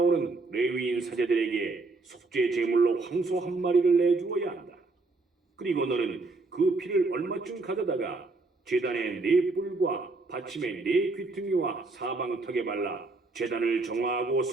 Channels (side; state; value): left; quieter; 3.5 dB